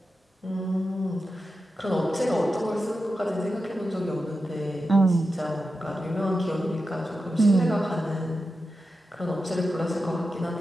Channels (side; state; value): both; normal; correlation 0.91